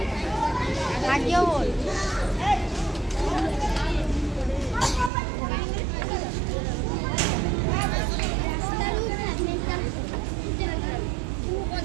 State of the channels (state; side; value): drops out; left; at 5.1 s